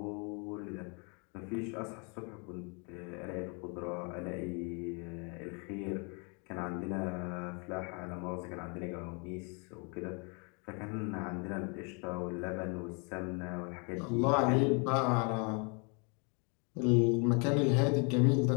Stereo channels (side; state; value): right; quieter; 35.3 dB